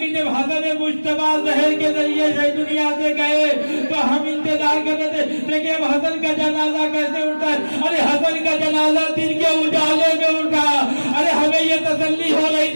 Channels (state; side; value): inverted; both; correlation -1.00